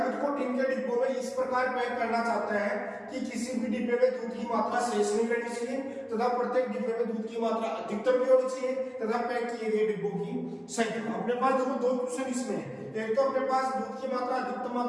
को टीन के डिब्बों में इस प्रकार पैक करना चाहता है कि किसी भी डिब्बे में दूध की मात्रा शेष नहीं रहनी चाहिए तथा प्रत्येक डिब्बे में दूध की मात्रा अधिकतम भी होनी चाहिए तथा पैक किए गए डिब्बों की संख्या। अपने पास देखो 2 क्वेश्चन इसमें है। एक तो अपने पास दूध की मात्रा अधिकतम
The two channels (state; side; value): identical; both; correlation 1.00